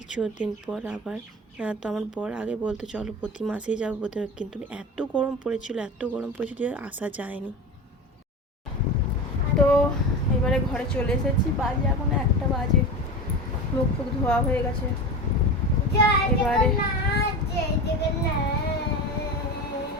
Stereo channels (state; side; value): normal; both; correlation 0.27